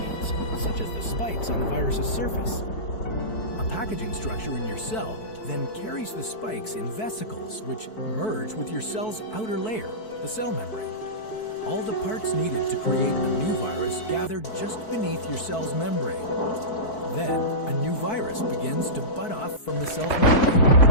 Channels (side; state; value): right; late; 4.6 ms